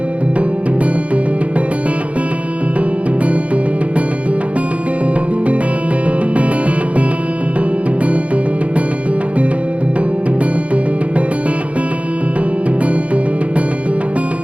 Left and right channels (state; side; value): late; left; 0.065 ms